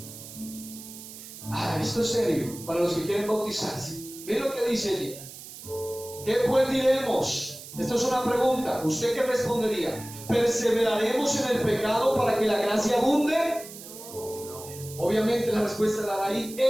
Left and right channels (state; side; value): noise; right; hiss, 14 dB below the sound